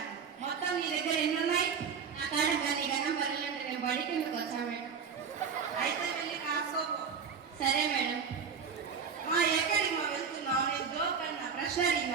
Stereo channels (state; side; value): quieter; left; 6.3 dB